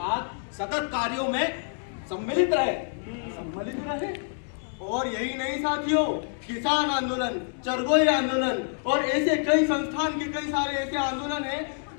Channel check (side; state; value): right; silent; digital silence